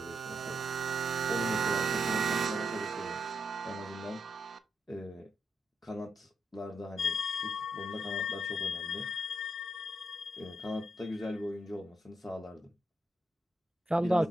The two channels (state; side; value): normal; both; correlation 0.81